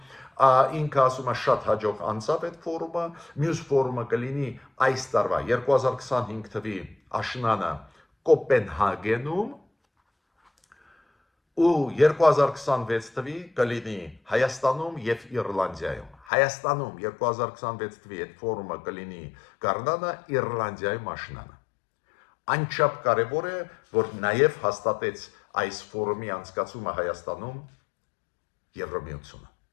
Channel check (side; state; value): right; drops out; at 16.2 s